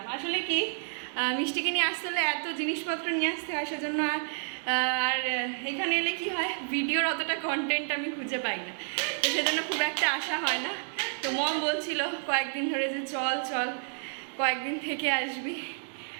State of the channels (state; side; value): silent; left; digital silence